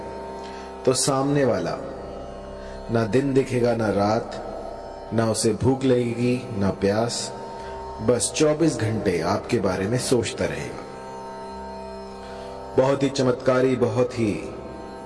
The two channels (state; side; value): identical; both; correlation 1.00